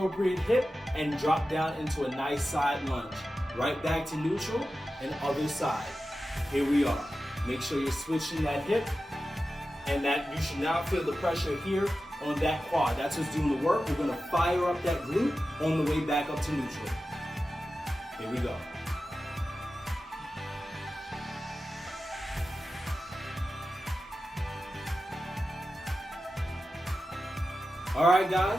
hip and drop down into a nice side lunge. Right back to neutral and other side. Here we are. Make sure you're switching that hip and that you should now feel the pressure here on that quad. That's what's doing the work. We're gonna fire up that glute on the way back up to neutral. Here we go. All right,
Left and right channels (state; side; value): normal; both; correlation 0.93